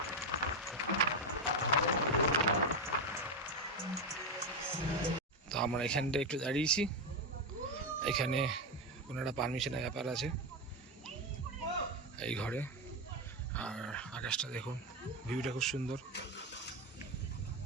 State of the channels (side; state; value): both; normal; correlation 0.10